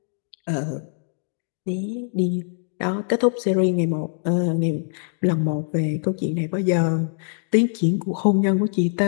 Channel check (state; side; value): silent; right; 56 dB below the other